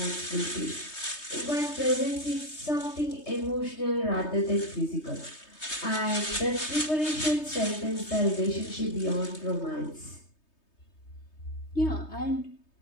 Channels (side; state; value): right; late; 3.2 ms